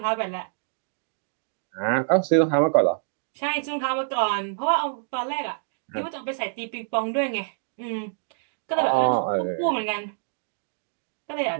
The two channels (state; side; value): silent; left; digital silence